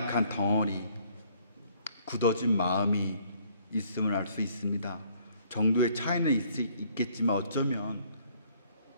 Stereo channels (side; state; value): both; inverted; correlation -0.62